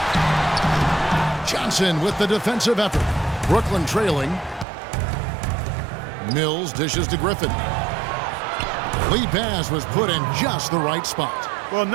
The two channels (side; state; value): left; drops out; at 4.7 s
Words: Johnson with the defensive effort. Brooklyn trailing. Mills dishes to Griffin. Lead pass was put in just the right spot. Well,